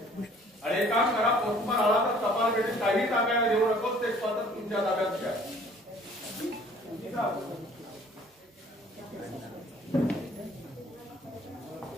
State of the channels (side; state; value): both; normal; correlation 0.55